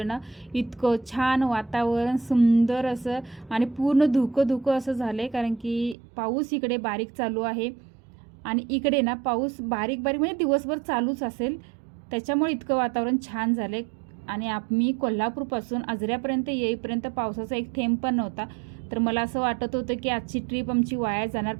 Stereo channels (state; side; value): drops out; left; at 6.0 s